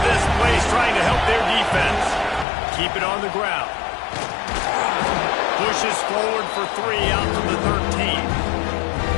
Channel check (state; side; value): drops out; right; at 2.5 s